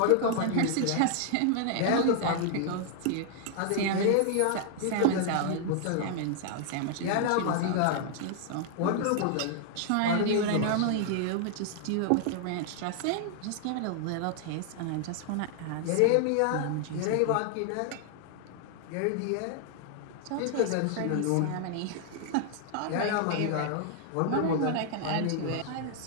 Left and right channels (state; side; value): different; both; correlation 0.00